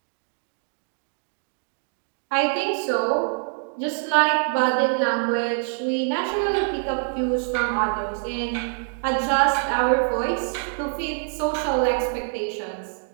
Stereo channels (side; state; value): left; silent; digital silence